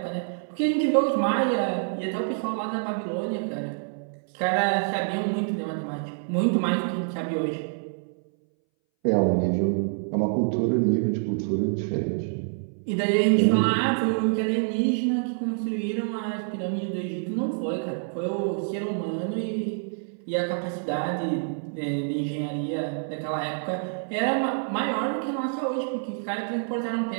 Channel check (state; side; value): silent; left; 60 dB below the other